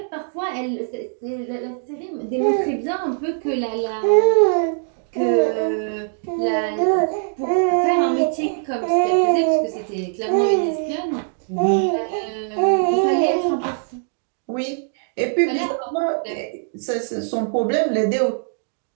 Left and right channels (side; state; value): left; silent; digital silence